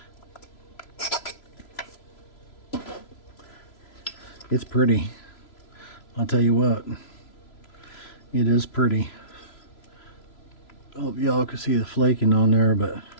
it's pretty. I'll tell you what, it is pretty. I hope y'all can see the flaking on there, but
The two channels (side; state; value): right; late; 3.0 ms